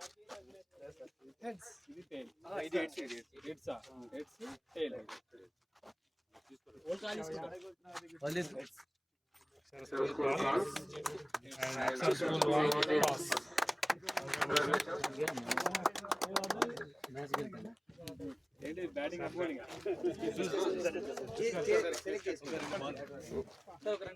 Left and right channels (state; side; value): identical; both; correlation 1.00